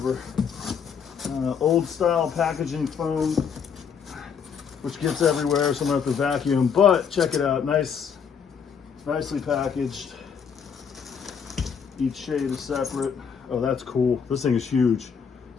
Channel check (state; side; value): quieter; right; 6.8 dB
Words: Old style packaging foam, which gets everywhere, so I'm gonna have to vacuum. But check it out, nicely packaged. Each shade is separate. Oh, that's cool. This thing is huge.